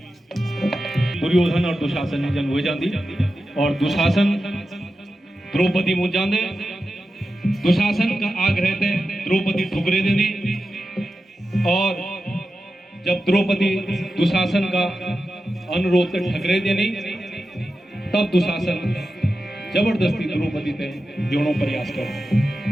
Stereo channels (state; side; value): normal; both; correlation 0.91